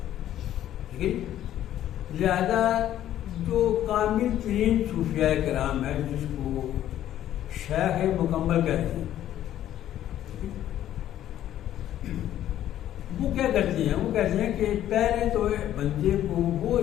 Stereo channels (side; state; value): right; quieter; 12.0 dB